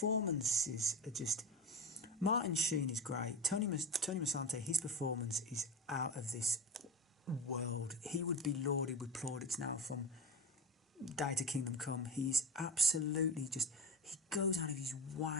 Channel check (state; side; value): normal; both; correlation 0.25